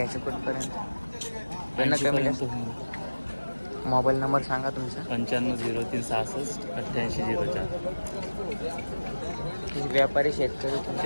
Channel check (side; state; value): both; inverted; correlation -1.00